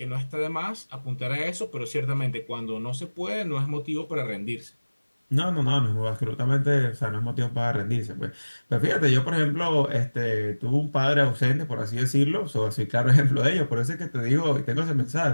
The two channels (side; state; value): both; inverted; correlation -1.00